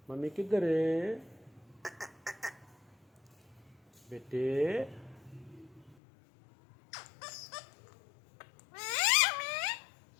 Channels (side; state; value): right; drops out; at 6.0 s